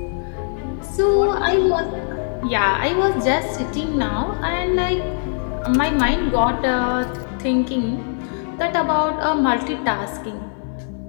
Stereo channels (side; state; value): right; silent; 65 dB below the other